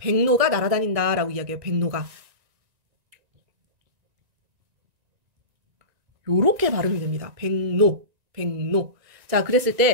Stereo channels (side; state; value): left; late; 1.9 ms